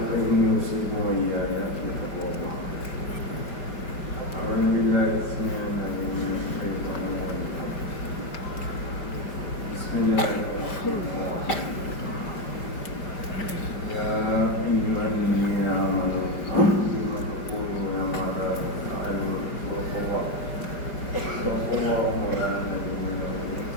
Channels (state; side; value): late; right; 5.2 ms